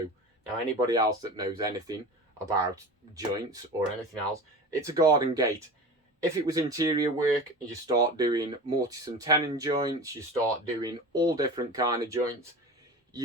Now, anybody else that knows anything about joints or anything else, it's a garden gate. If it was interior work, you start doing mortise and tenon joints, you start doing all different kind of joints,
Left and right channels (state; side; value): normal; both; correlation 0.33